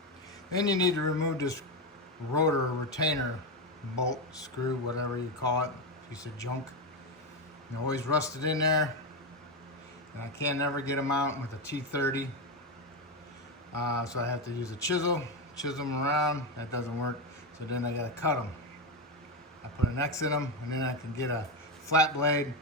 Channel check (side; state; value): both; normal; correlation 0.11